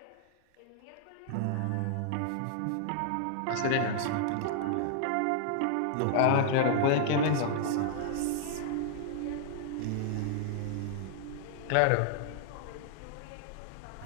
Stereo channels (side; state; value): both; different; correlation -0.01